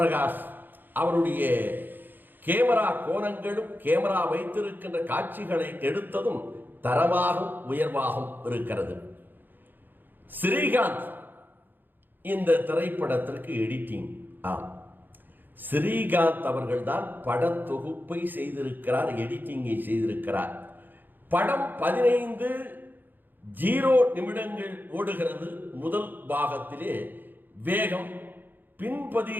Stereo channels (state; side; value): late; left; 0.091 ms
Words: அவருடைய கேமரா கோணங்களும் கேமரா வைத்திருக்கின்ற காட்சிகளை எடுத்ததும் தரமாகவும் உயர்வாகவும் இருக்கிறது. ஸ்ரீகாந்த் இந்த திரைப்படத்திற்கு எடிட்டிங். ஸ்ரீகாந்த் அவர்கள் தான் படத்தொகுப்பை செய்திருக்கிறார், எடிட்டிங்கை செய்திருக்கிறார். படம் 15:0 நிமிடங்கள் ஓடுகிறது. முதல் பாகத்திலே வேகம், பின்